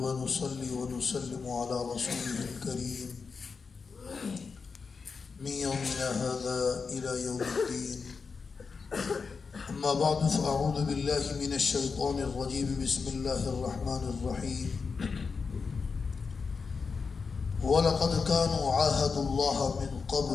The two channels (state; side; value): quieter; right; 5.1 dB